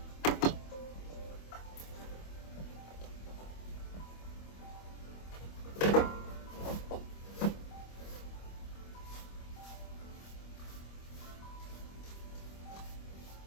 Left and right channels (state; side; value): late; right; 25 ms